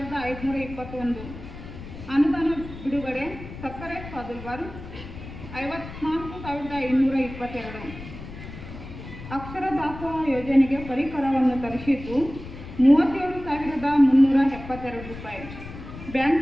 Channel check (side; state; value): left; noise; rumble, 13 dB below the sound